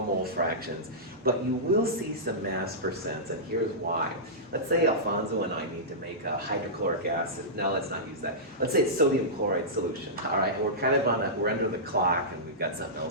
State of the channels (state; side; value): normal; both; correlation -0.16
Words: mole fractions, but you will see some mass percents, and here's why. Let's say Alfonso and I need to make a hydrochloric acid. No, let's not use that. Let's say it's sodium chloride solution, all right? And we're kind of we're under the clock and we've got something